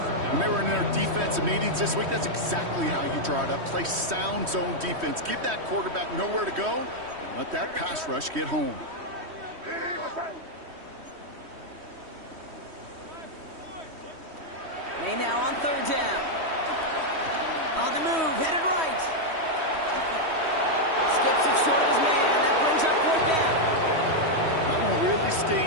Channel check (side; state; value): left; late; 3.1 ms